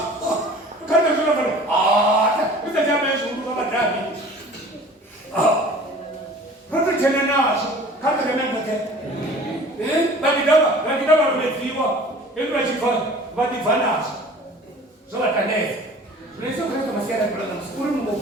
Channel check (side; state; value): both; normal; correlation 0.45